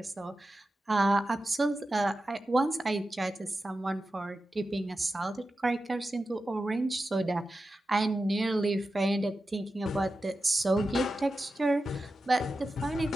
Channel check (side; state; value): both; normal; correlation 0.92